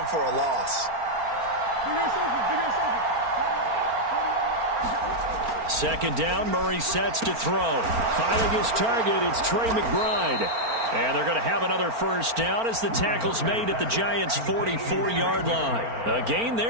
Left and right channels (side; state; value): left; late; 4.4 ms